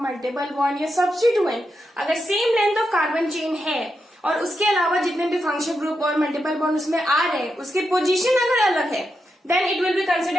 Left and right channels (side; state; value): both; normal; correlation 0.86